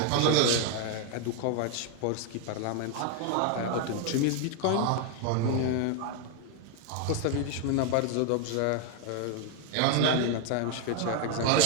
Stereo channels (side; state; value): both; different; correlation 0.01